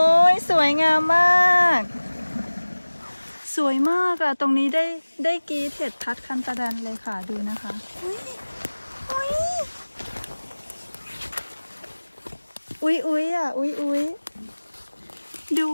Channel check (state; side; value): inverted; both; correlation -1.00